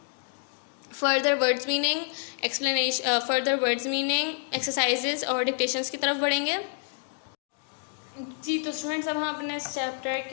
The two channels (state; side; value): silent; right; 59 dB below the other